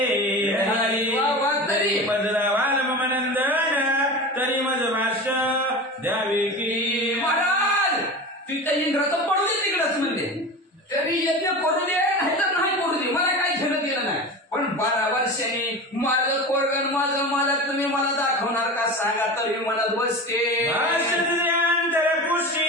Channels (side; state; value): both; normal; correlation 0.30